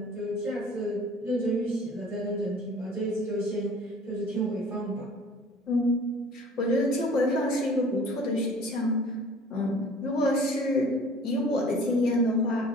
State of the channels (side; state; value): both; normal; correlation 0.48